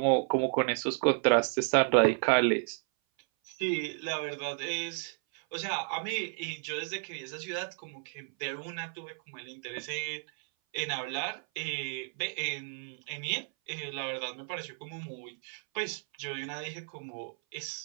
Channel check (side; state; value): left; silent; 56 dB below the other